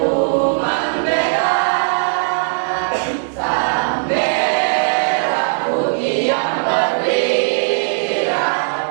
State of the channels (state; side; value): silent; left; digital silence